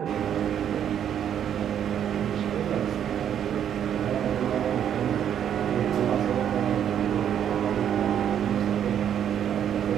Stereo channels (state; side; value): quieter; left; 9.4 dB